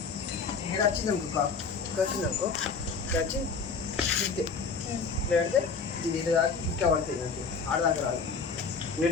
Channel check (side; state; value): right; quieter; 5.1 dB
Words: ఇక్కడ వచ్చిందనుకో, వచ్చిందనుకో వచ్చి ఇద్దే లేదంటే ఇది ఇటు దాకా ఇట్లా పడుతుంది, అంతే ఆడదాకా రాదు.